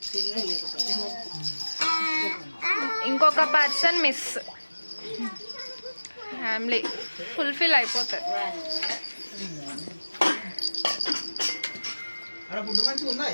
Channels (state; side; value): inverted; both; correlation -1.00